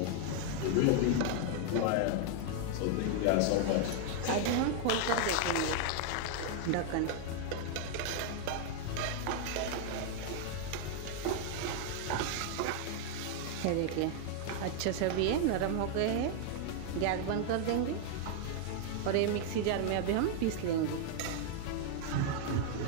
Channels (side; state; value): both; different; correlation 0.00